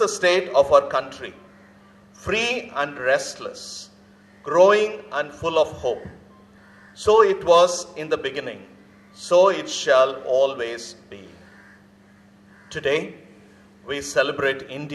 state of our country, free and restless, growing and full of hope. So it was in the beginning, so it shall always be. Today, we celebrate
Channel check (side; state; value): both; identical; correlation 1.00